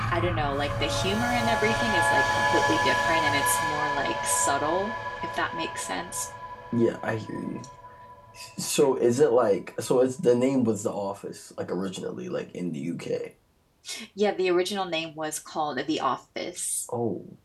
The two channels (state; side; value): identical; both; correlation 1.00